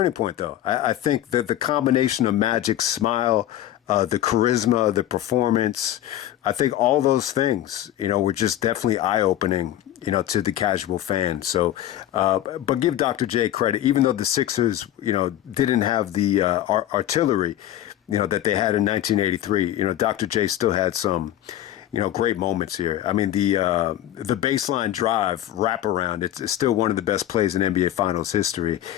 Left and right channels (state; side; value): quieter; right; 12.9 dB